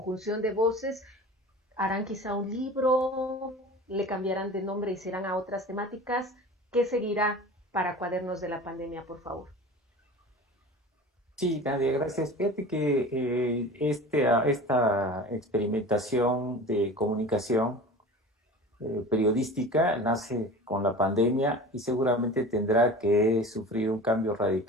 de voces, harán quizá un libro, le cambiarán de nombre y serán a otras temáticas. ¿Qué seguirá para Cuadernos de la Pandemia, por favor? Sí, Nadia, gracias. Fíjate que esta experimentación de comunicación periodística nace con la pandemia y seguramente tendrá que sufrir un cambio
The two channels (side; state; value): both; normal; correlation 0.37